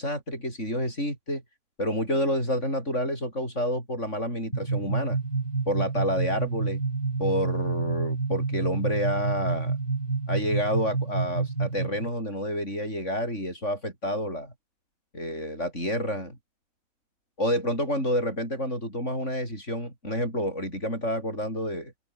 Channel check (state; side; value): late; right; 3.5 ms